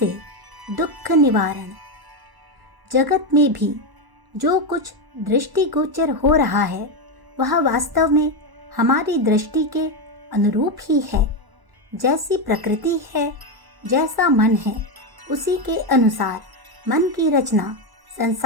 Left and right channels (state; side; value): late; left; 1.0 ms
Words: दुख निवारण। जगत में भी जो कुछ दृष्टिगोचर हो रहा है वह वास्तव में हमारी दृष्टि के अनुरूप ही है। जैसी प्रकृति है, जैसा मन है, उसी के अनुसार मन की रचना